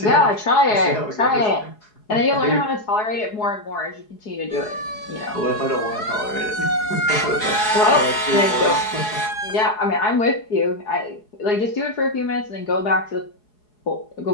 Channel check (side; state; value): right; late; 4.7 ms